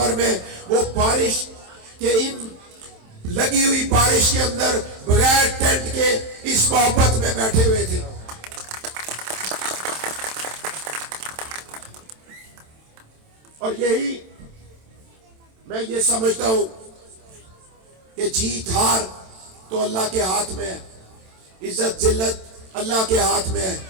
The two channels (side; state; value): left; late; 27 ms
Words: میں، وہ بارش کے ان لگی ہوئی بارش کے اندر بغیر ٹینٹ کے اس محبت میں بیٹھے ہوئے تھے۔ اور یہی میں یہ سمجھتا ہوں کہ جیت ہار تو اللہ کے ہاتھ میں ہے، عزت ذلت اللہ کے ہاتھ میں ہے،